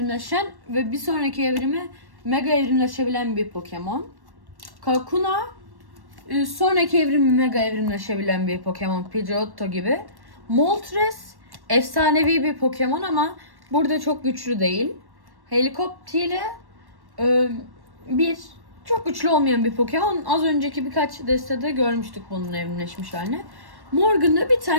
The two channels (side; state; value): left; late; 1.1 ms